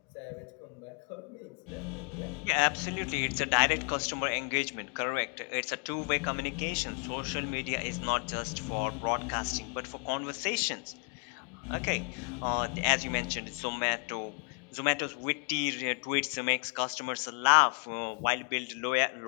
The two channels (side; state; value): right; quieter; 38.0 dB